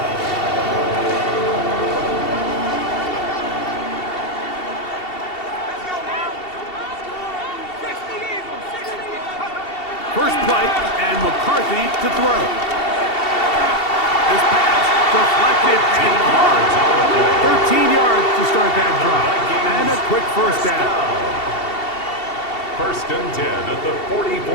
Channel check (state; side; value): late; right; 2.7 ms